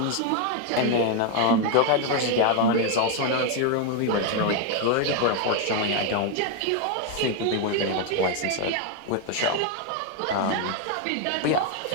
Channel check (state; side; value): different; both; correlation 0.01